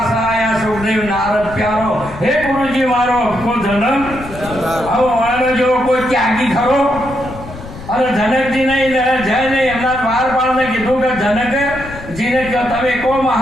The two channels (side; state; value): left; noise; rumble, 14 dB below the sound